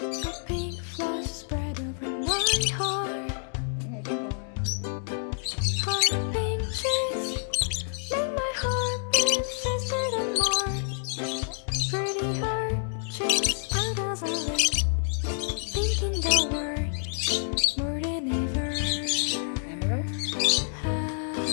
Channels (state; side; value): silent; right; digital silence